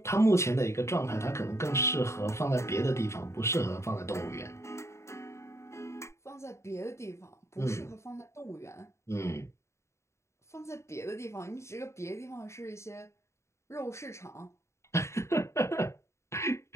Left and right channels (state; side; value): late; right; 0.14 ms